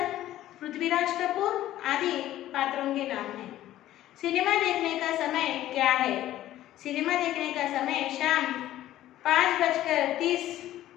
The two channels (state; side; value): quieter; right; 13.7 dB